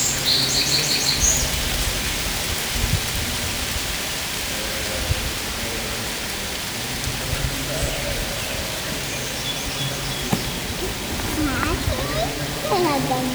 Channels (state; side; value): identical; both; correlation 1.00